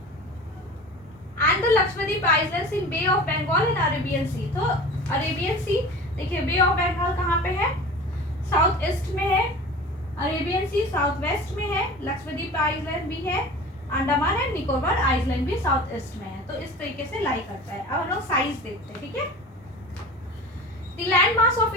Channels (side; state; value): both; normal; correlation 0.37